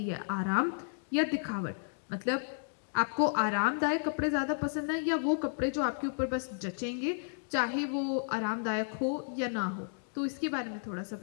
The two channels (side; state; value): right; silent; digital silence